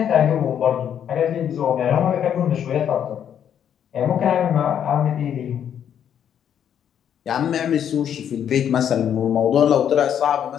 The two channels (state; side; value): quieter; right; 9.1 dB